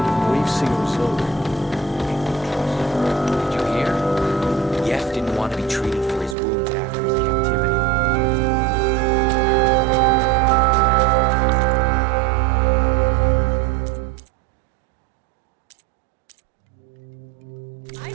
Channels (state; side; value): drops out; left; at 6.4 s